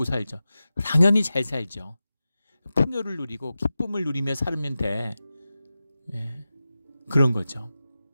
살죠. 당연히 잘 살죠. 풍요를 누리고 기쁨을 누리며 살면 돼. 그런 거죠.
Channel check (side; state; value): both; inverted; correlation -0.94